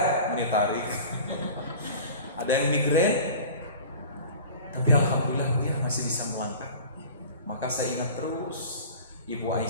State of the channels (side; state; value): both; inverted; correlation -0.40